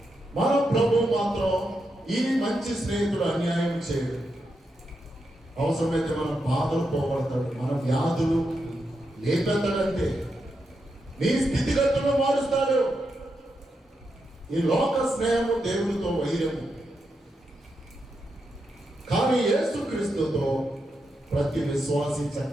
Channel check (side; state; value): both; normal; correlation 0.85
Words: మన ప్రభు మాత్రం ఈ మంచి స్నేహితుడు అన్యాయం చేయడు. అవసరమైతే మన బాధలు పోగొడతాడు, మన వ్యాధులు లేపెత్తాడంతే, నీ స్థితిగతులను మారుస్తాడు. ఈ లోక స్నేహము దేవుడితో వైరము, కానీ యేసుక్రీస్తుతో ప్రతి విశ్వాసి